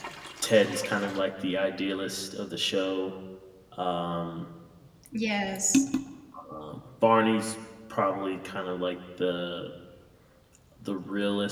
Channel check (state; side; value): identical; both; correlation 1.00